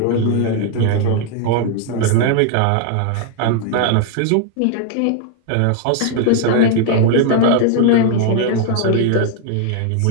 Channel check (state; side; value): different; both; correlation 0.00